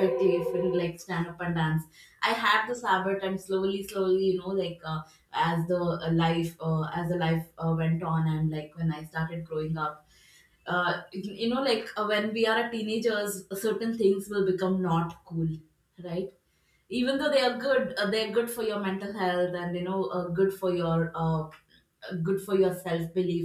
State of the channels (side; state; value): both; identical; correlation 1.00